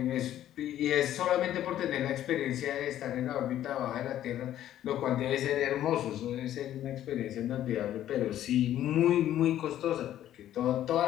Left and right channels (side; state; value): right; quieter; 12.1 dB